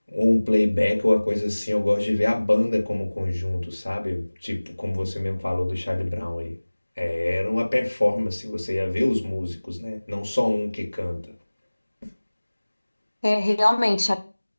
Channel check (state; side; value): inverted; both; correlation -1.00